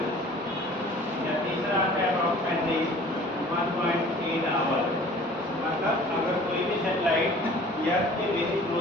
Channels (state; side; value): normal; both; correlation 0.48